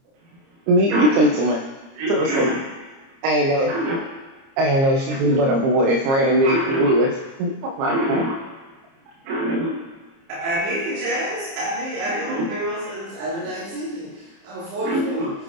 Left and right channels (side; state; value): left; late; 30 ms